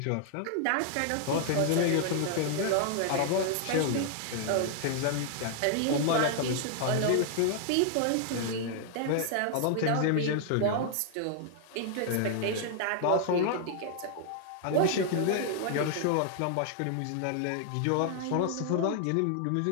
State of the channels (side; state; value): both; different; correlation 0.00